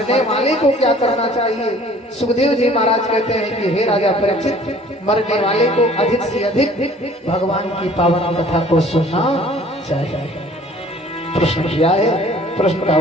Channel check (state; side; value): normal; both; correlation 0.52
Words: वाले को क्या करना चाहिए? सुखदेव जी महाराज कहते हैं कि हे राजा परीक्षित, मरने वाले को अधिक से अधिक भगवान की पावन कथा को सुनना चाहिए। प्रश्न किया है, प्रश्न का